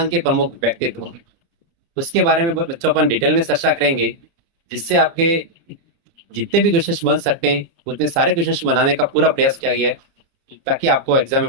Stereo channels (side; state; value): left; late; 30 ms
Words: के प्रमुख व्यक्तित्व। उसके बारे में बच्चों अपन डिटेल में चर्चा करेंगे, जिससे आपके जितने भी क्वेश्चन बन सकते हैं उतने सारे क्वेश्चन बनाने का पूरा प्रयास किया गया है, ताकि आपको एग्जाम